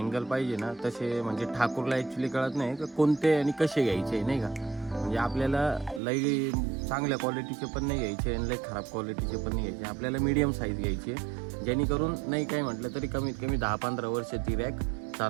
पाहिजे ना तसे म्हणजे ठाकूरला ॲक्च्युली कळत नाही का कोणते आणि कसे घ्यायचे नाही का. म्हणजे आपल्याला लई चांगल्या क्वालिटीचे पण नाही घ्यायचे आणि लई खराब क्वालिटीचे पण नाही घ्यायचे. आपल्याला मीडियम साईज घ्यायची आहे, जेणेकरून नाही काय म्हटलं तरी कमीत कमी 10-15 वर्ष ती रॅक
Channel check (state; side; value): drops out; left; at 6.0 s